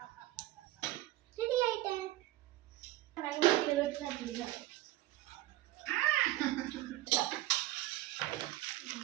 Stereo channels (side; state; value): left; quieter; 16.8 dB